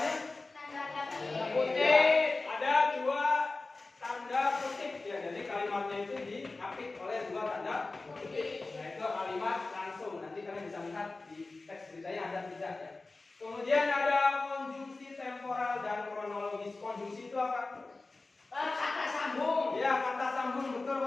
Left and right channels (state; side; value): quieter; right; 3.4 dB